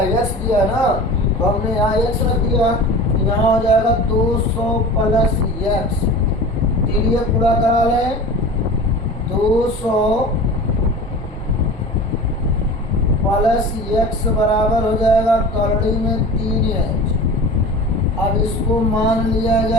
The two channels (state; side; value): normal; both; correlation 0.36